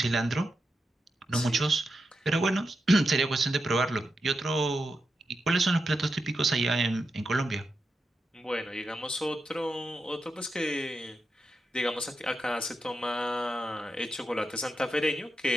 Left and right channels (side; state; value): both; normal; correlation 0.87